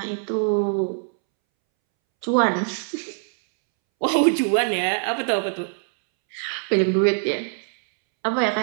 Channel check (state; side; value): silent; left; 63 dB below the other